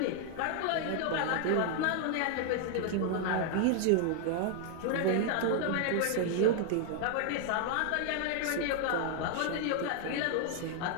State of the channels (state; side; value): different; both; correlation 0.00